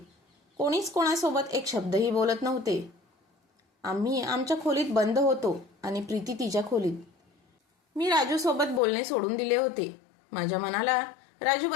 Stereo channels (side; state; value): right; drops out; at 8.8 s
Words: कोणीच कोणासोबत एक शब्दही बोलत नव्हते. आम्ही आमच्या खोलीत बंद होतो आणि प्रीती तिच्या खोलीत. मी राजूसोबत बोलणे सोडून दिले होते. माझ्या मनाला